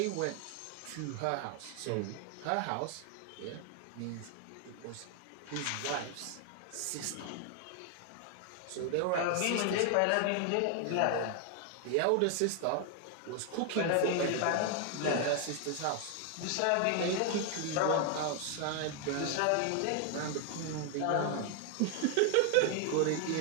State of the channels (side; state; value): both; different; correlation 0.00